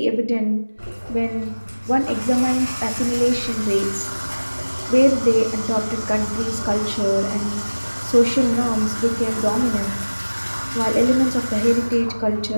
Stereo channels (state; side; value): inverted; both; correlation -1.00